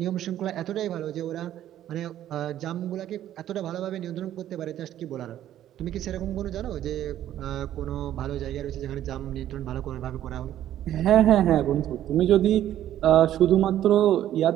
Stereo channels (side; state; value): left; quieter; 12.0 dB